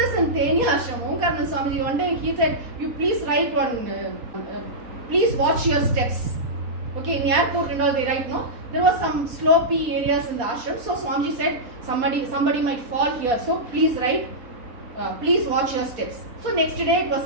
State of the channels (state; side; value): late; left; 4.2 ms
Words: in Tenya Ashram. Omkarnan Swamiji, one day he said, you please write one, please watch your steps. Okay, in airport and all they write, no? There was some slopey areas in the ashram. So Swamiji said, somebody might fall here. So please write, please watch your steps. So next day it